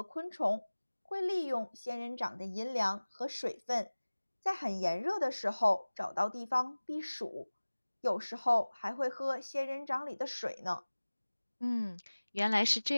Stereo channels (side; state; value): both; inverted; correlation -1.00